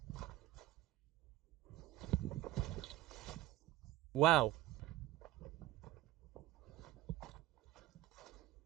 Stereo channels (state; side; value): quieter; left; 15.2 dB